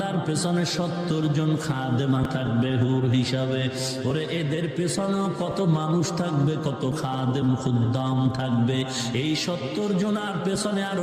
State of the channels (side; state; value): both; identical; correlation 1.00